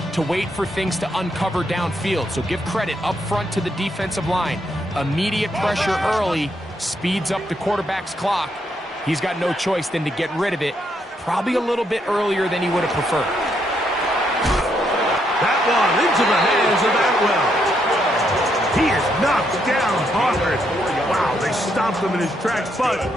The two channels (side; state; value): both; normal; correlation 0.76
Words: to wait for things to uncover downfield. So give credit up front to the defensive line. Immediate pressure early speeds up the quarterback's clock. He's got no choice than to get rid of it, probably a little bit earlier than he would have preferred. That one into the hands of Atwell. He is knocked down hard. Wow, they stopped him in his tracks, but